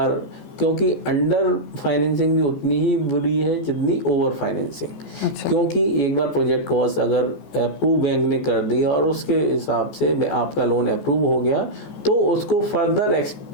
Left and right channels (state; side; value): late; right; 14 ms